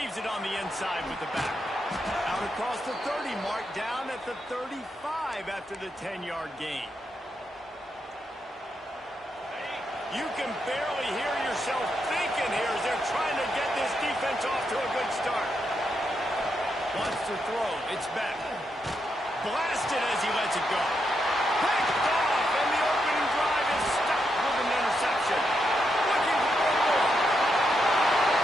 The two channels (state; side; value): normal; both; correlation 0.82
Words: it on the inside with the back. Out across the 30 mark, down at the 35 after the 10-yard gain. You can barely hear yourself thinking here as they're trying to get this defense off to a good start. Wants to throw, it's back. Blasted as he lets it go. Picked off, and the opening drive is stopped with an interception. Looking for more.